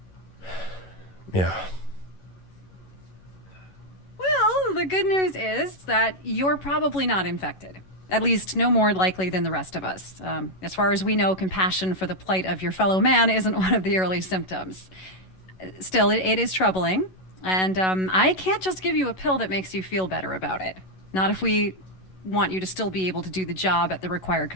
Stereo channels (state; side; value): late; right; 11 ms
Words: Yeah. Well, the good news is that you're probably not infected. At least no more likely than the rest of us. As far as we know, compassion for the plight of your fellow man isn't one of the early symptoms. Still, it is troubling, and I can't just give you a pill that makes you feel better about it. Not if we want you to still be able to do the job at the required